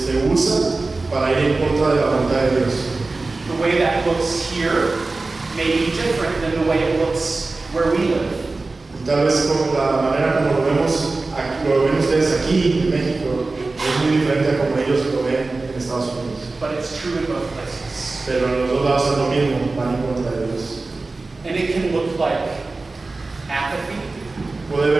usa para ir en contra de la voluntad de Dios. The way that looks here may be different than the way it looks where we live. Y tal vez como la manera como lo ven ustedes aquí en México es muy diferente a como ellos lo ven en Estados Unidos. But it's true in both places. Pero en los dos lados es lo mismo, van en contra de Dios. And it can look like apathy. Puede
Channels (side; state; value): left; quieter; 3.5 dB